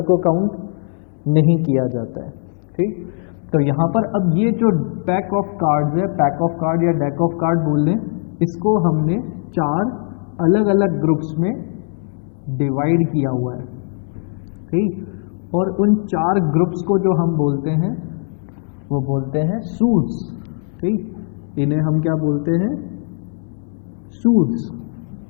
को काउंट नहीं किया जाता है। ठीक, तो यहाँ पर अब ये जो पैक ऑफ कार्ड्स है, पैक ऑफ कार्ड या डेक ऑफ कार्ड बोल लें, इसको हमने 4 अलग अलग ग्रुप्स में डिवाइड किया हुआ है। ठीक, और उन 4 ग्रुप्स को जो हम बोलते हैं वो बोलते हैं सूट्स। ठीक, इन्हें हम क्या बोलते हैं? Suits,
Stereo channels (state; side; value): silent; right; 56 dB below the other